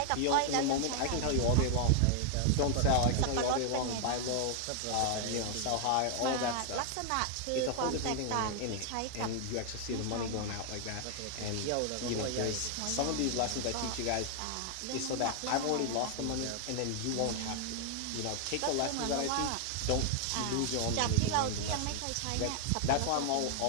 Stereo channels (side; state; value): both; different; correlation 0.00